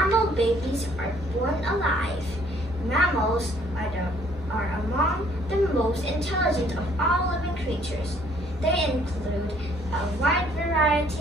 babies are born alive. Mammals are among the most intelligent of all living creatures. They include a wide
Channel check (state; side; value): normal; both; correlation 0.62